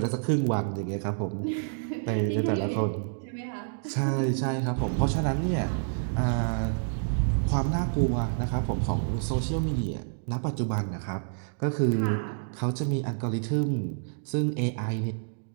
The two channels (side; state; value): left; silent; digital silence